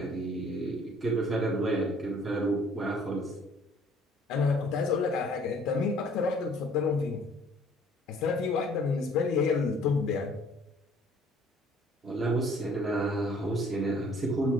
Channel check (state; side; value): normal; both; correlation 0.57